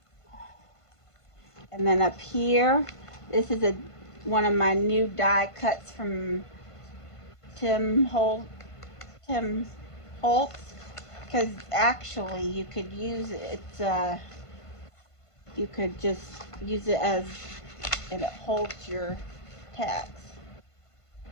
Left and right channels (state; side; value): late; right; 1.5 ms